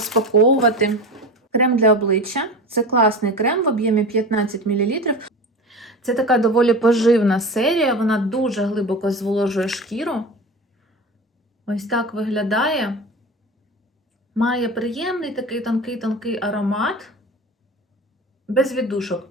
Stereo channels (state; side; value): normal; both; correlation 0.29